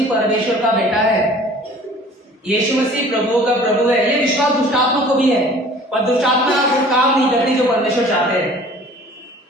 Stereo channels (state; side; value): normal; both; correlation 0.48